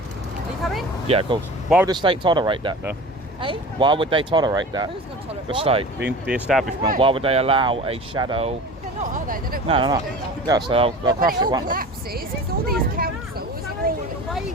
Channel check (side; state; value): both; normal; correlation 0.37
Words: you coming? Yeah, of course. Why would the state tolerate that, though? Eh? Why would they tolerate that? Who's going to tolerate The what? state, the establishment. Why would they allow a shadow? They're not, are they? They don't No, want no, us to do no. that. Yeah, so they'll But when crush it it, all won't they? collapses, because all these councils are all